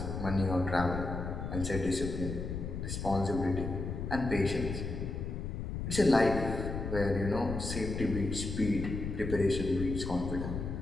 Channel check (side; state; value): left; noise; rumble, 4 dB below the sound